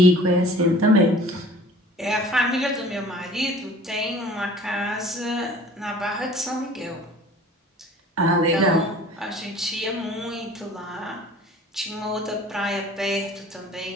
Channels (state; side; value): normal; both; correlation 0.47